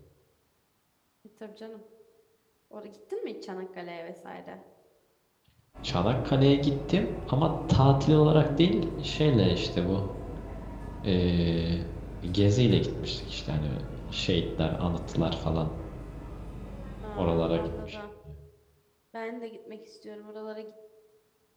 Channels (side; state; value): both; identical; correlation 1.00